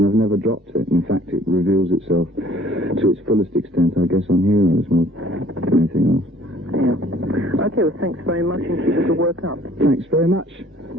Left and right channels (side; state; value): both; normal; correlation 0.56